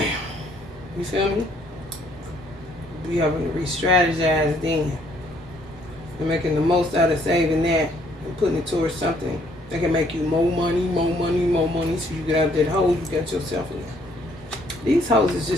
You feel me? We having to re-strategize then. And making the most out of saving that and putting it towards something that can make you more money, so you get out that hole you got yourself in. These hoes is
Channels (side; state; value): both; normal; correlation 0.65